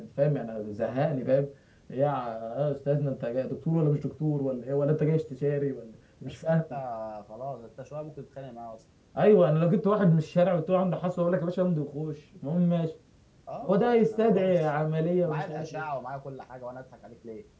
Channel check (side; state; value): both; identical; correlation 1.00